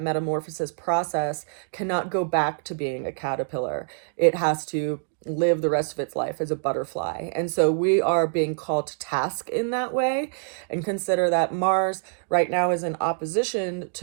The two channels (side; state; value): left; silent; digital silence